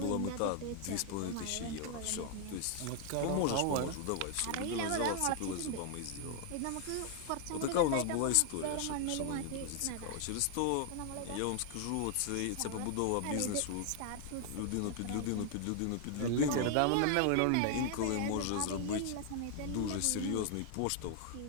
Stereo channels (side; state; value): both; different; correlation 0.00